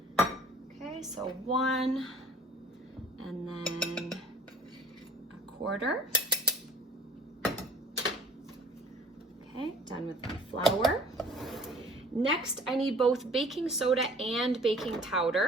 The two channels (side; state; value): both; normal; correlation 0.50